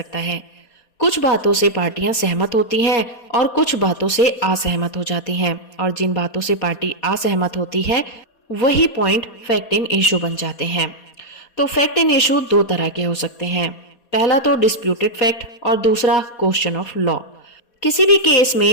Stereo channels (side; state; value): right; late; 4.2 ms